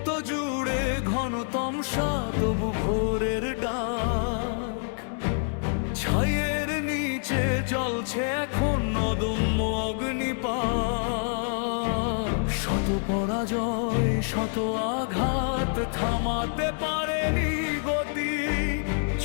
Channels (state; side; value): silent; right; 60 dB below the other